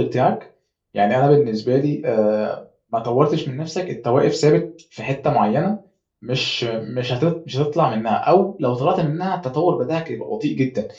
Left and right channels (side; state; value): both; identical; correlation 1.00